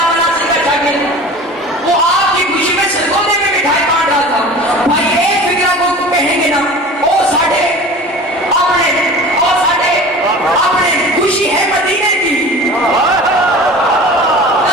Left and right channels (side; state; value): both; normal; correlation 0.39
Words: मनासिर का शागिर्द, वो आपकी खुशी में सरगोदे में मिठाई बांट रहा था। भाई एक फिक्रा को कहेंगे ना, ओ साढ़े अपने खुशी है मदीने की,